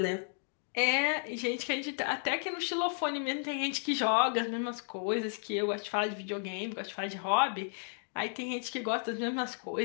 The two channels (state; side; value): silent; right; 56 dB below the other